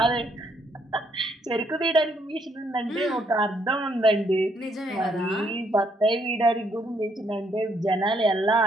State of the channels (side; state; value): both; normal; correlation 0.71